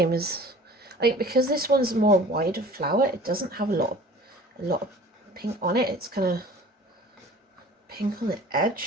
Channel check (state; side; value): normal; both; correlation 0.45